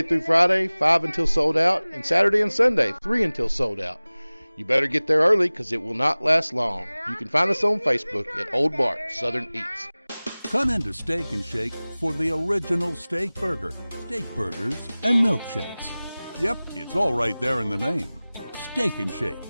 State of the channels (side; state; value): both; inverted; correlation -0.99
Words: through Friday, 5 until sold out, and Saturday and Sunday, 3 until sold out. You better get there early because it will not last long. You can find us on Facebook at Old Bart Southern Eats. Come into Steak and Shake for the original steak burger, steak burgers, and milkshakes. Yep, it's all right there in the name. Steak and Shake.